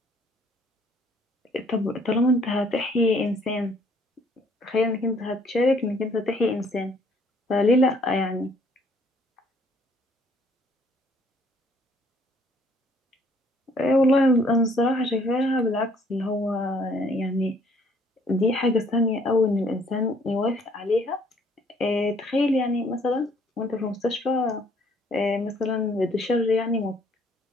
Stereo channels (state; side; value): normal; both; correlation 0.62